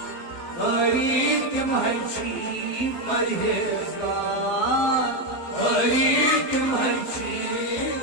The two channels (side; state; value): right; late; 12 ms